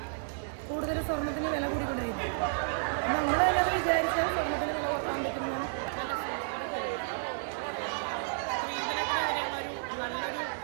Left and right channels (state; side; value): silent; left; 57 dB below the other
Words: കൂടുതൽ സ്വർണത്തിന് വില കൂടിക്കൊണ്ടിരിക്കുന്നത്. നമ്മൾ തന്നെ അത് വിചാരിച്ചാൽ സ്വർണത്തിന് വില കുറക്കാൻ പറ്റുന്നതാണ്. നല്ലൊരു